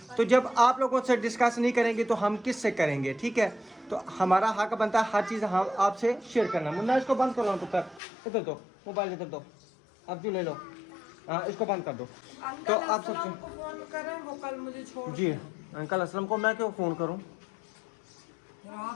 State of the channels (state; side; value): drops out; right; at 8.0 s